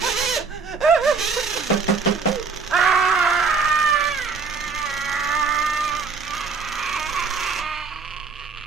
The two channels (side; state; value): left; quieter; 5.0 dB